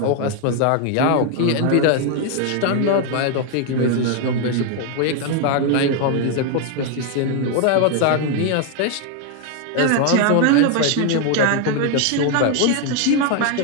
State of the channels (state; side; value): different; both; correlation 0.01